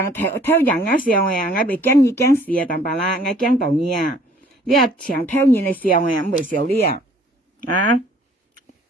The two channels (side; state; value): both; normal; correlation 0.56